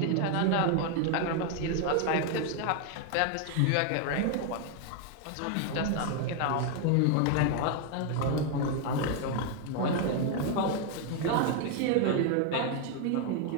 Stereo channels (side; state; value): both; different; correlation 0.01